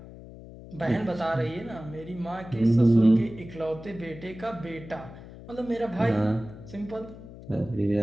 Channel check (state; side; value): noise; left; hum, 16 dB below the sound